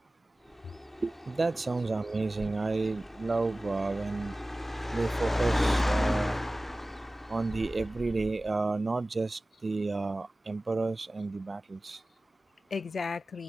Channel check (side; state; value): both; normal; correlation 0.97